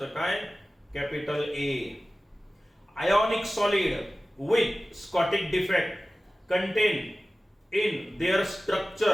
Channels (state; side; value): normal; both; correlation 0.96